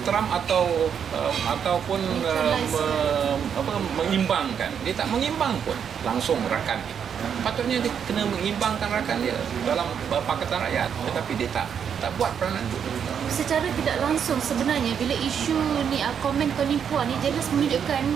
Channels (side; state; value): left; quieter; 7.8 dB